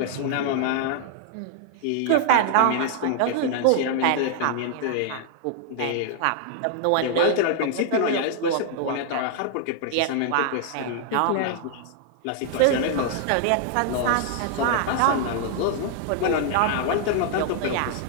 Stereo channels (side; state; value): both; different; correlation -0.01